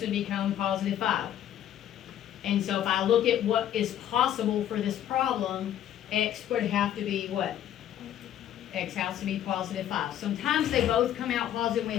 become positive 5. And so if I look at what is possible for this problem, x would have to be what? X has to be positive 5. Sometimes they both come out positive, and we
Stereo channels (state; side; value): quieter; right; 11.0 dB